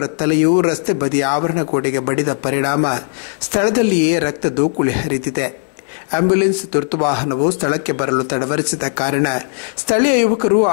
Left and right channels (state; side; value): silent; right; 65 dB below the other